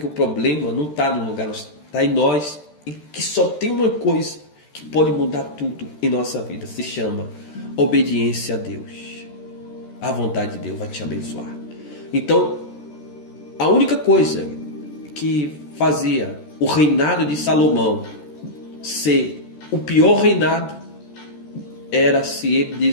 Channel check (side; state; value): right; late; 13 ms